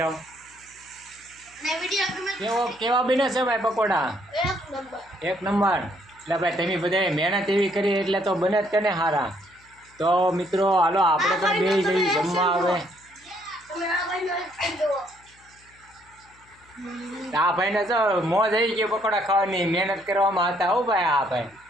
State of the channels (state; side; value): noise; left; hum, 30 dB below the sound